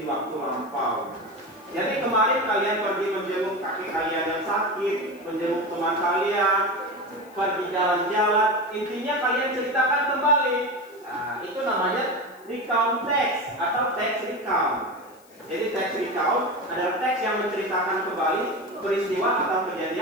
waktu lampau. Jadi kemarin kalian pergi menjenguk kakek kalian yang sakit, menjenguk teman kalian, pergi jalan-jalan, intinya kalian ceritakan kembali. Nah, itu namanya recount text atau text recount. Jadi text recount adalah teks yang menceritakan kembali peristiwa atau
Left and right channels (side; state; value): left; noise; hiss, 28 dB below the sound